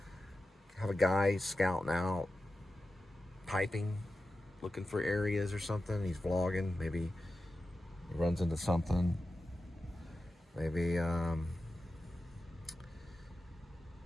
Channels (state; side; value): normal; both; correlation 0.92